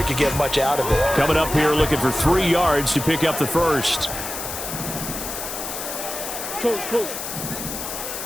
could get much out of it. Coming up here looking for 3 yards to pick up the first. Close.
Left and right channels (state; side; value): noise; left; hiss, 6 dB below the sound